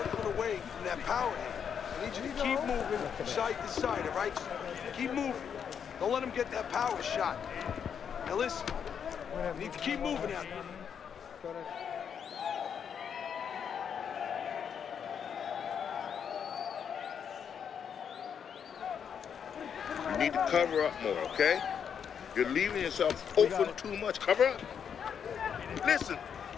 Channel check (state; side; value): quieter; right; 7.6 dB